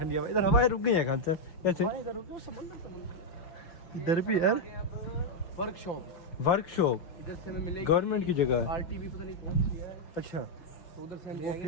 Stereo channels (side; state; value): right; late; 5.9 ms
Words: हवा, इधर हवाएं रुक गई हैं खान साहब कैसे? इधर भी यार वर्कशॉप इधर से हमें मिलेगी, गवर्नमेंट की जगह है, RTV पता नहीं कौन सी है। अच्छा तो उधर से हम